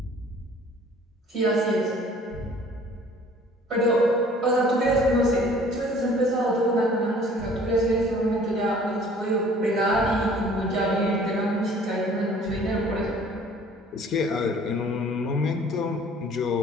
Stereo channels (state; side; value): normal; both; correlation 0.52